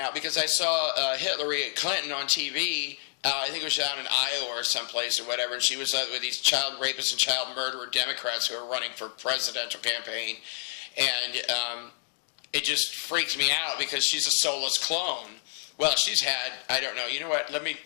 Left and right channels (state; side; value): silent; right; digital silence